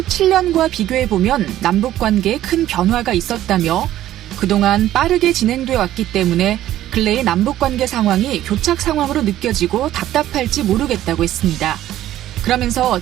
비교해보면 남북관계에 큰 변화가 있었다며 그동안 빠르게 진행돼 왔기 때문에 근래의 남북관계 상황이 교착 상황으로 느껴지고 답답할지 모르겠다고 했습니다. 그러면서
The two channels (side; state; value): left; quieter; 13.2 dB